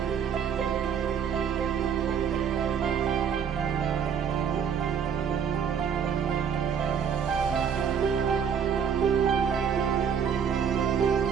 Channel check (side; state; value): left; quieter; 7.5 dB